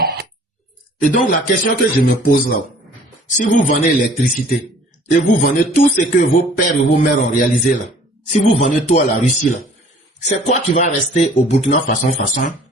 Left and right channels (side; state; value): both; normal; correlation 0.53